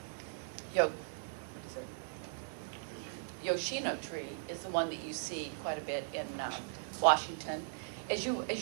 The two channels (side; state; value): left; silent; digital silence